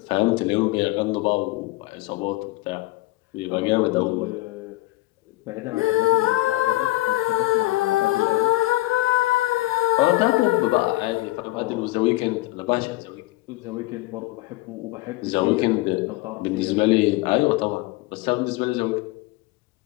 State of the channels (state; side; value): quieter; right; 19.3 dB